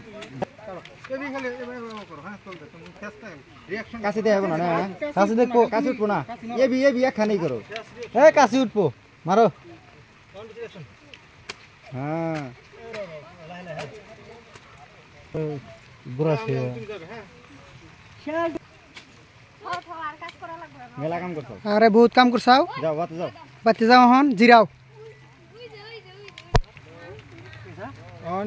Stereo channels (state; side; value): identical; both; correlation 1.00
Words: কাছে দেখাবো না কাছে দেখো কাছে উঠবো না এবি একখানেই করো এই কাছে উঠবো মারো হ্যাঁ বুড়া সে আর কাজ করা লাগবে না মেলা কাম করছো আরে বহুত কাম করছাও যাও বাতে যাও বাতি যাও হন জিরাও